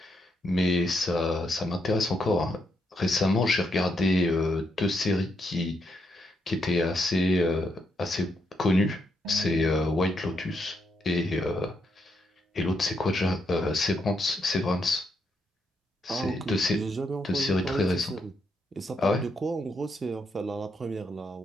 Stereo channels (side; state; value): both; normal; correlation 0.79